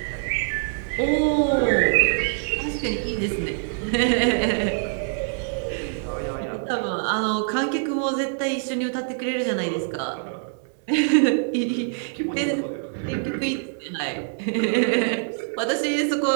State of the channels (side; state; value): left; silent; digital silence